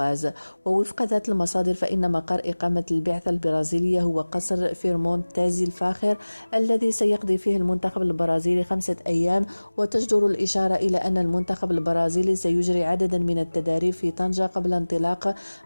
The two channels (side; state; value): both; inverted; correlation -1.00